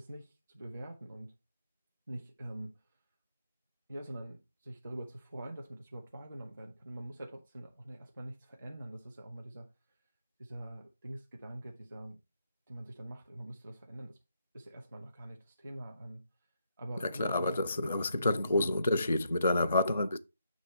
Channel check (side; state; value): both; inverted; correlation -0.76